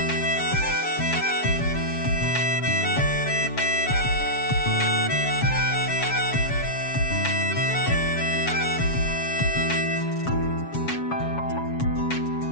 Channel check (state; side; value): late; right; 7.2 ms